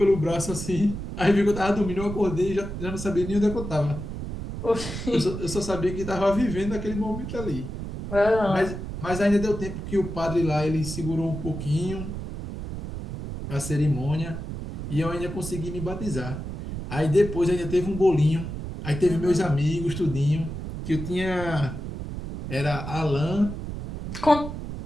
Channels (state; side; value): noise; right; rumble, 7 dB below the sound